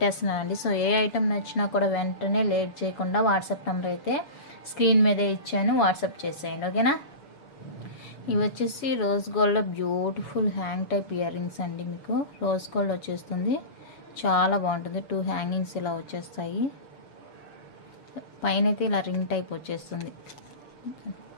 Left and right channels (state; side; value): late; right; 7.1 ms